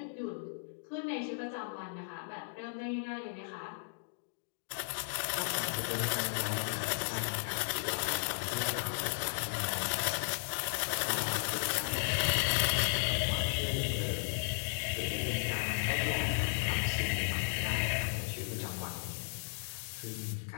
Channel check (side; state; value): right; silent; digital silence